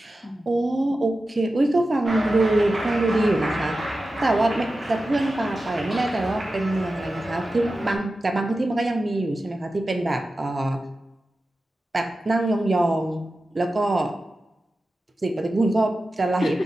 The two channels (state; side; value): normal; both; correlation 0.93